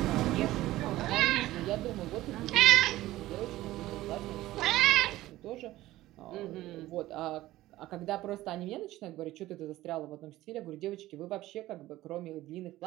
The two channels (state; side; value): quieter; left; 16.2 dB